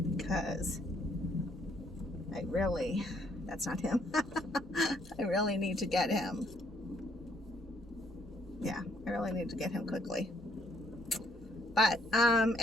because that's not him. I really need to get him. Yeah, I really need to get him quickly. But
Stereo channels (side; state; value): both; normal; correlation 0.69